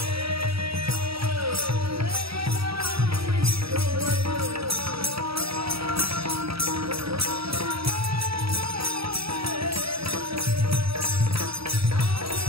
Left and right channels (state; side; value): late; left; 0.76 ms